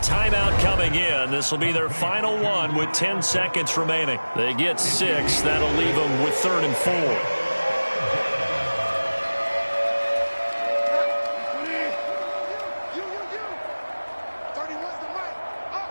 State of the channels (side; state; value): both; inverted; correlation -1.00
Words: coming in. This will be their final one with 10 seconds remaining. They get 6. That'll leave them with 3rd and 4.